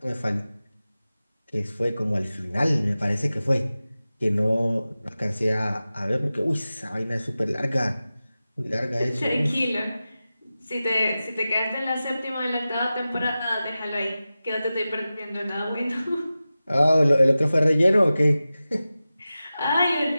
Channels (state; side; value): inverted; both; correlation -0.95